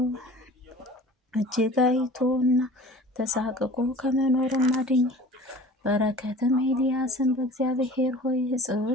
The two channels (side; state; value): both; normal; correlation 0.44